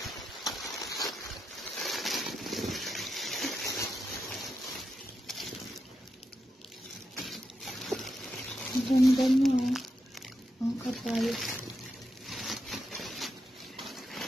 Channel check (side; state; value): both; normal; correlation 0.86